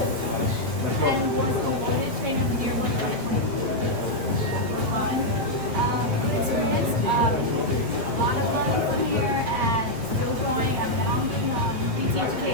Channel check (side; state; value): left; late; 8.6 ms